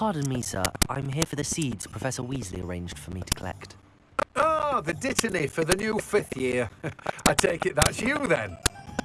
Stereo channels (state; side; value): identical; both; correlation 1.00